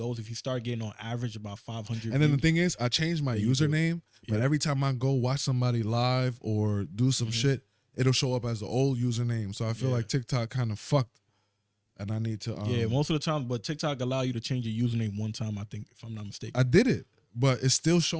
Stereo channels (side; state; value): both; identical; correlation 1.00